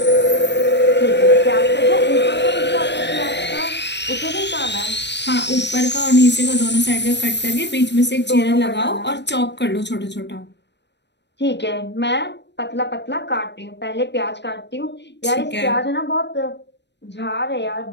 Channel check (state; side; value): late; right; 0.50 ms